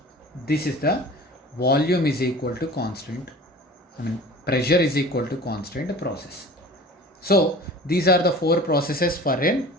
this is the volume is equal to constant, pressure is equal to constant process. So these are the 4 processes for an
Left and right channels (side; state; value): both; normal; correlation 0.41